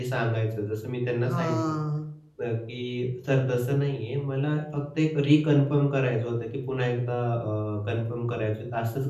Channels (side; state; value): both; identical; correlation 1.00